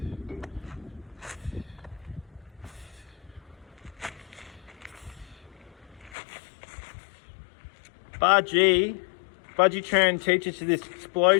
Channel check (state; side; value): drops out; right; at 6.2 s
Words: Budgie Tran teaches you this